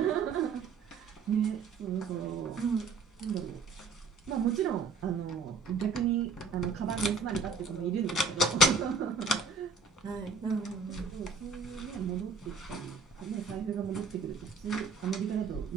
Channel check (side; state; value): left; quieter; 4.3 dB